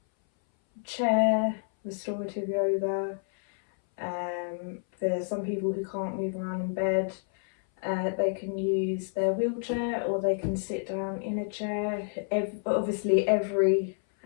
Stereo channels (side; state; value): right; silent; 59 dB below the other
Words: chair restorative yoga. For some people who can't move around in bed, they can use their wheelchair or they can sit down in a chair. Obviously every